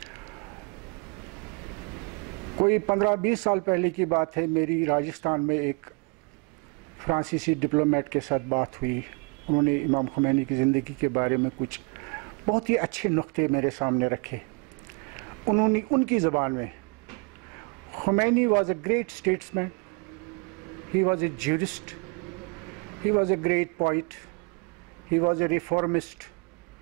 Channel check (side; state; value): left; quieter; 32.2 dB